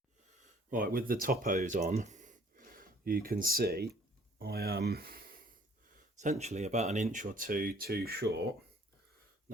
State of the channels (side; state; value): both; normal; correlation 0.57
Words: Right, with the top hose on, you can see I am essentially about an inch or two too short.